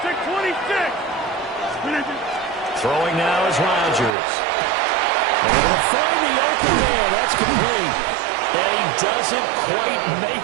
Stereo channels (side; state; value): left; drops out; at 4.2 s